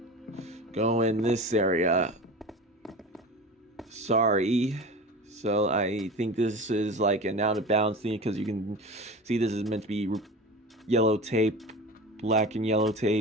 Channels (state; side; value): normal; both; correlation 0.33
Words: go in this area. Sorry. So I think this is like an out of bounds thing because you can see this is meant to be yellow tape, black and yellow